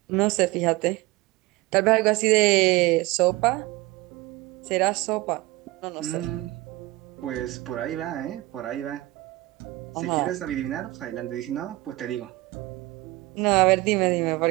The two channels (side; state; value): left; quieter; 19.8 dB